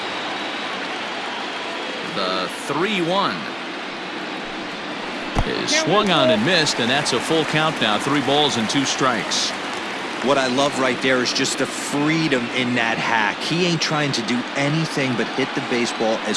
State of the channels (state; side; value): identical; both; correlation 1.00